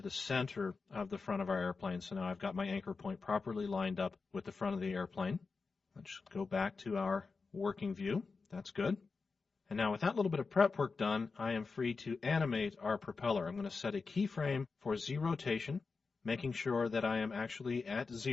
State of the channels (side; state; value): right; quieter; 4.5 dB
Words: the center of the front of our airplane. So now I've got my anchor point properly lined up with the front of the airplane. Let's go back to our working view. That's good. And now with that little bit of prep work done, I am free to animate our propeller. I'm going to set a keyframe for Z rotation, making sure that I am actually at